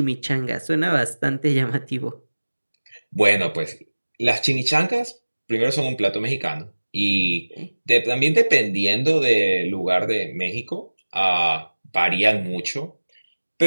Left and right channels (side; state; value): both; inverted; correlation -1.00